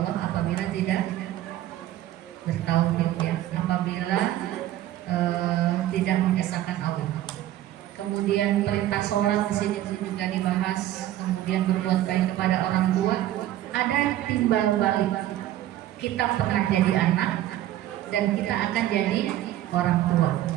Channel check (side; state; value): left; quieter; 13.5 dB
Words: apabila tidak bertauhid ya. Apabila tidak mengesahkan Allah. Kemudian perintah sholat di sini juga dibahas. Kemudian berbuat baik kepada orang tua. Ada timbal balik. Kita pernah jadi anak dan kita akan jadi orang tua.